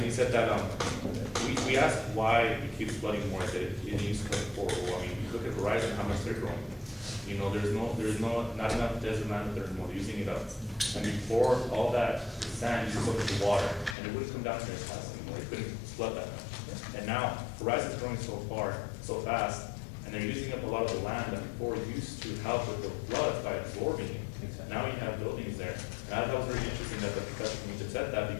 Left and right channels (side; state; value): right; drops out; at 14.0 s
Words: he said that, we asked why it keeps flooding more, that it needs to come forward. Well, I mean, you look at Verizon, how much they're growing. You know, there's not enough desert land there anymore, they're using it up. And before all that sand used up the water, and it wouldn't come down here as fast anymore, it couldn't flood that much. And now Verizon's growing so fast, and they're using up a lot of the land that before used to help with the floods by absorbing it. Exactly. Now you have buildings there. And I thought it was very interesting that the professor from UTEP said that,